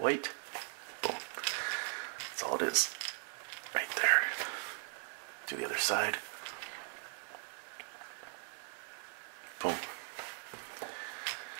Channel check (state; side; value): silent; left; 52 dB below the other